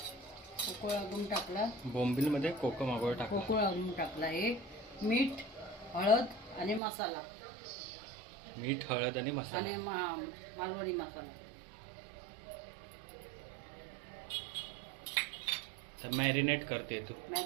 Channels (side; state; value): left; drops out; at 6.8 s